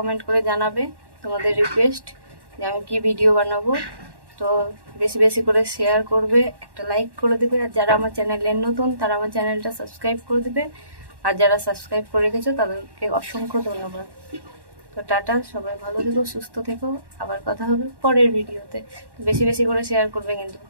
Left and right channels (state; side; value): late; left; 1.1 ms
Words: করে জানাবে। তোমাদের রিকোয়েস্ট যে আমি কি ভিডিও বানাবো। তো বেশি বেশি করে শেয়ার করবে, একটা লাইক করে দেবে, আর যারা আমার চ্যানেলে নতুন তারা আমার চ্যানেলটা সাবস্ক্রাইব করে দেবে, আর যারা সাবস্ক্রাইব করে রেখেছো তাদেরকে অসংখ্য ধন্যবাদ। তো টাটা, সবাই ভালো থেকো, সুস্থ থেকো, আবার কথা হবে পরের ভিডিওতে। বেশি বেশি করে শেয়ার করবে, কিন্তু